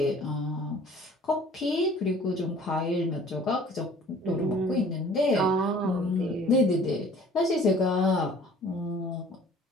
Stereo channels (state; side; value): normal; both; correlation 0.51